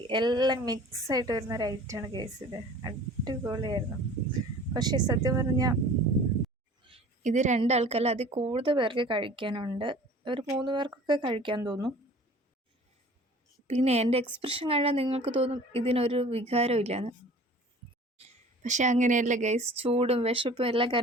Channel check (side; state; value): both; normal; correlation 0.46